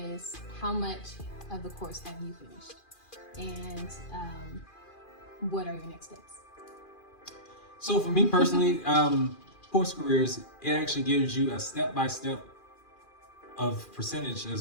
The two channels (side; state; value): right; late; 2.4 ms